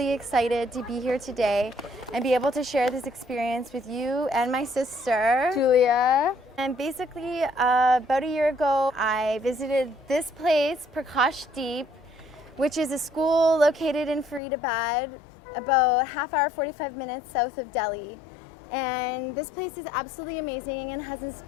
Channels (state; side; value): drops out; right; at 14.4 s